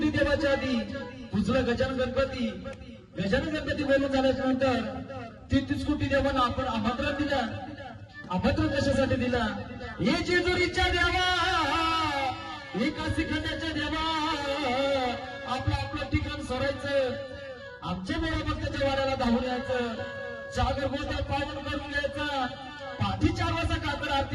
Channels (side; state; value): both; identical; correlation 1.00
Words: देवाच्या आधी पुजलं गजानन गणपती. गजानन गणपती बोलून झाल्याच्या नंतर 33 कोटी देवांना आपण आमंत्रण दिलं. आमंत्रण कशासाठी दिला? हे जेजुरीच्या देवा, हे काशी खंडाच्या देवा, आपलं आपलं ठिकाण सोडायचं, आमच्या मोठ्या भक्ताच्या वाड्याला धावून यायचं, जागर गोत्यात पावन करून घ्यायचं. पाठी 4 वाजता कातर